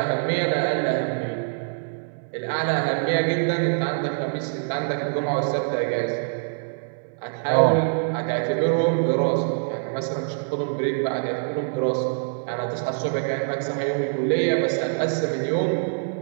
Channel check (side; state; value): left; silent; 59 dB below the other